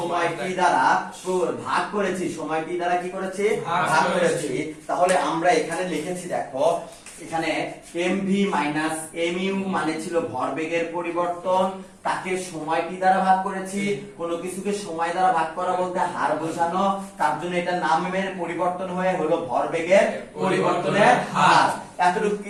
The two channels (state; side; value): identical; both; correlation 1.00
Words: দ্বারা ভাগ করেছি, সময়টি দ্বারা কি করেছি? ভাগ করেছি। তাহলে আমরা এখানে লিখেছি, দেখো এখানে mv মাইনাস mu মানে ছিল ভরবেগের পরিবর্তন, তাকে সময়টি দ্বারা ভাগ করেছি। কোনো কিছুকে সময় দ্বারা ভাগ করা বলতে হার বোঝানো, তার জন্য এটা নামের পরিবর্তন হয়ে হলো ভরবেগের পরিবর্তনের হার। এতটুকু